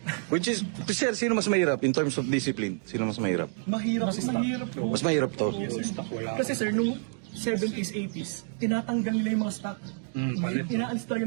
Which is, sir, sino mas mahirap in terms of discipline? Sino mas mahirap? mahirap po. Mas mahirap to. Kasi sir, nung 70s, 80s, tinatanggal nila yung mga stock. Inaalis talaga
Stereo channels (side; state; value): left; silent; 56 dB below the other